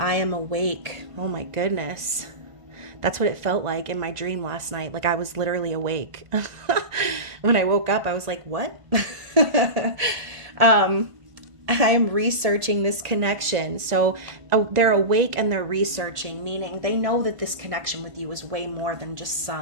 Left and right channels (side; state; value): left; late; 1.5 ms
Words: am awake. Oh my goodness. That's what it felt like in my dream last night. Like, I was literally awake. When I woke up, I was like, what? I'm researching this connection. So they're awake and they're researching, meaning they know that this connection with you is way more than just